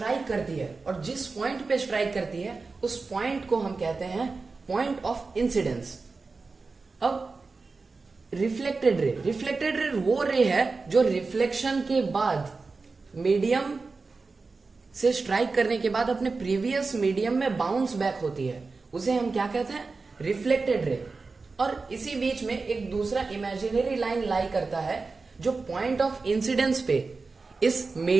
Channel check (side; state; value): left; quieter; 4.1 dB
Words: करती है, और जिस पॉइंट पे स्ट्राइक करती है उस पॉइंट को हम कहते हैं पॉइंट ऑफ इंसिडेंस। अब रिफ्लेक्टेड रे वो रे है जो रिफ्लेक्शन के बाद मीडियम से स्ट्राइक करने के बाद अपने प्रीवियस मीडियम में बाउंस बैक होती है, उसे हम क्या कहते हैं? Reflected ray. और इसी बीच में एक दूसरा इमेजिनरी लाइन लाई करता है जो पॉइंट ऑफ इंसिडेंस पे इस